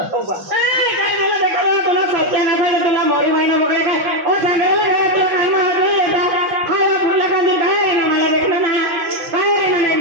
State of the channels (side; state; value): left; late; 5.6 ms